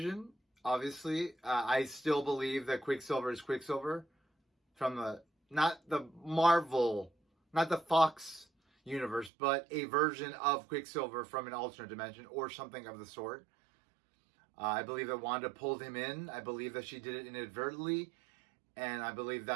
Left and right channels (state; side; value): drops out; left; at 9.3 s